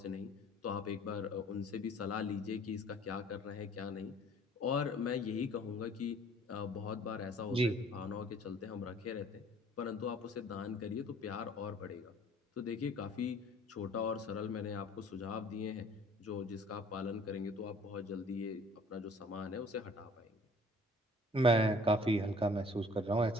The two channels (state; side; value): normal; both; correlation 0.53